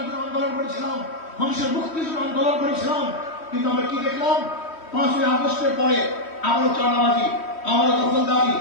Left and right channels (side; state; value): right; late; 3.1 ms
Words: জন্য আন্দোলন করেছিলাম, মানুষের মুক্তির জন্য আন্দোলন করেছিলাম। কিন্তু আমরা কি দেখলাম? 5ই আগস্টের পরে আবারও চাঁদাবাজি, আবারও দখলদারি,